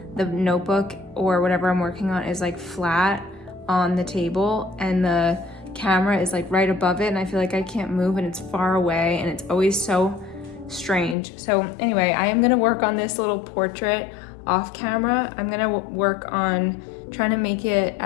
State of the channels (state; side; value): drops out; right; at 11.2 s